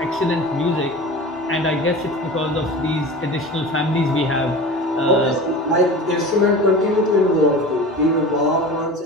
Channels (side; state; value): both; normal; correlation 0.34